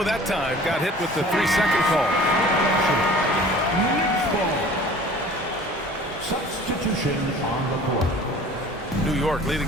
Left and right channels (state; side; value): normal; both; correlation 0.46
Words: that time. Got hit with the 3-second call. Substitution on the court. New York